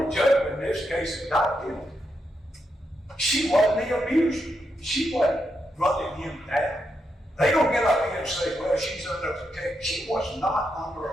judgment in this case is not guilty. She wasn't the abuser. She wasn't running him down. They don't get up here and say, well, she's under protection. She was not under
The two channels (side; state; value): both; normal; correlation 0.83